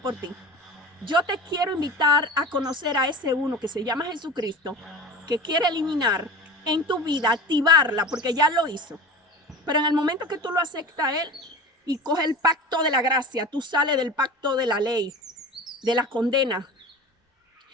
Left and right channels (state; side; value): normal; both; correlation 0.34